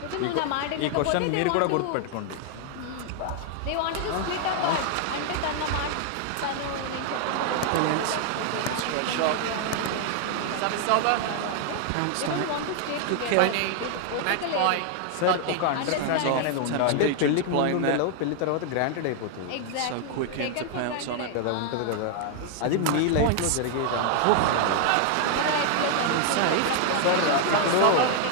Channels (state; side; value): different; both; correlation 0.00